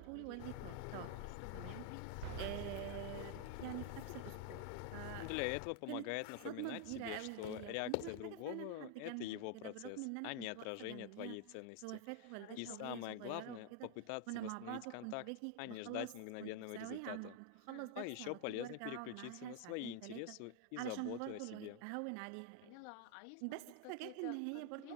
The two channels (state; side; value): different; both; correlation 0.00